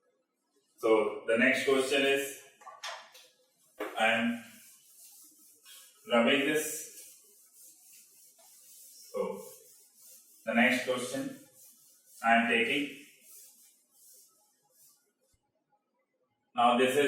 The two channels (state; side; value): identical; both; correlation 1.00